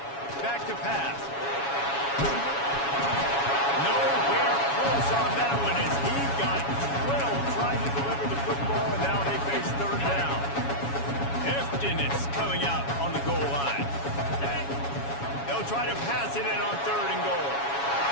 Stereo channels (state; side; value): late; right; 7.2 ms